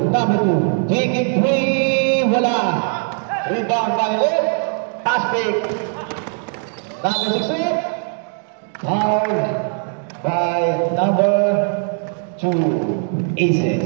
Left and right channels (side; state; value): left; silent; 57 dB below the other